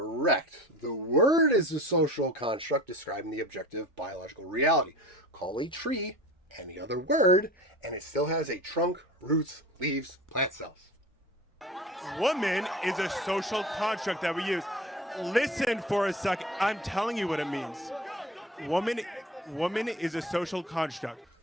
The word is a social construct describing the objective biological reality. Call a tree any other word, and it still has a trunk, roots, leaves, plant cells. Woman is a social construct that we use. Listen for a second. I'm telling you what it means. Woman is a social construct.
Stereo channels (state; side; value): normal; both; correlation 0.38